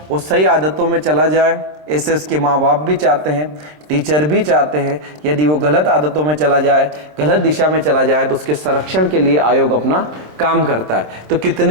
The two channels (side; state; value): left; late; 26 ms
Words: वो सही आदतों में चला जाए, ऐसे उसके माँ बाप भी चाहते हैं, टीचर भी चाहते हैं। यदि वो गलत आदतों में चला जाए, गलत दिशा में चला जाए, तो उसके संरक्षण के लिए आयोग अपना काम करता है। तो